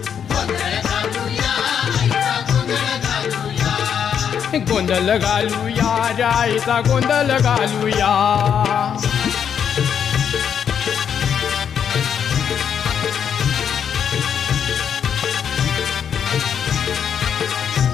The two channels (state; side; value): quieter; right; 8.0 dB